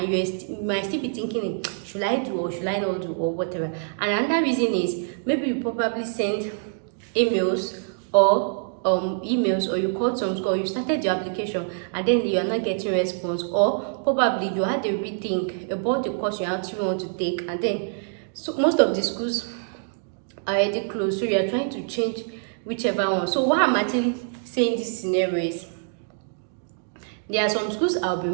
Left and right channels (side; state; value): left; silent; digital silence